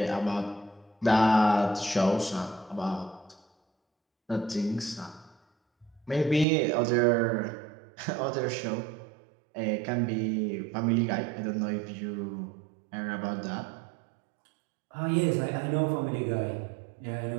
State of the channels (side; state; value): left; drops out; at 6.5 s